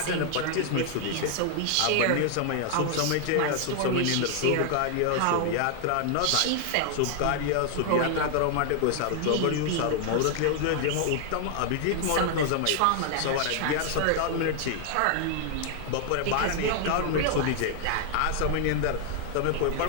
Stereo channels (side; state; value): both; different; correlation 0.00